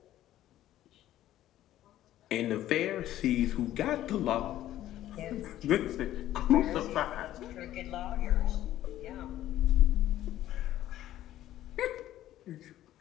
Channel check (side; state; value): right; quieter; 13.3 dB